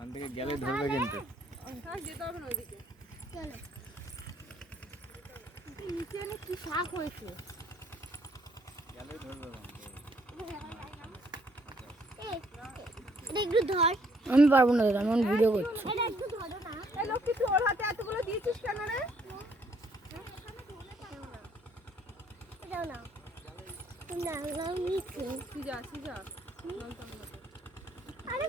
থেকে গেলে ধরবে কিন্তু যেতে হবে না ওইদিকে চলো নিচে অনেক কি শাক হয়েছে গেলে ধরবে একটু ধর আমি পারবো না দাদা, আমি ভিডিও করছি। এটা একটু ধরো না এই লক্ষ্মী তুই ওর হাতে এতগুলো দিয়েছিস কেন রে এটাও না না নিচে সিজা সিজা আরে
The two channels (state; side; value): normal; both; correlation 0.66